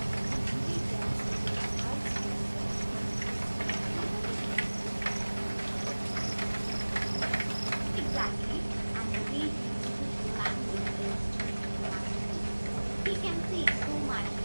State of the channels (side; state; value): both; inverted; correlation -1.00